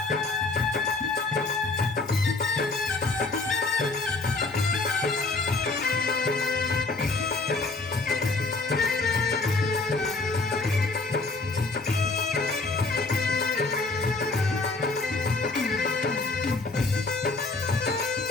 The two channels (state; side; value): quieter; right; 3.5 dB